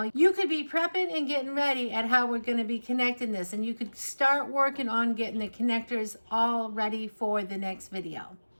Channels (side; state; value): both; inverted; correlation -1.00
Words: you could be prepping and getting ready at how we're gonna be connecting this, and you could start working on getting the connectors all ready for the next video.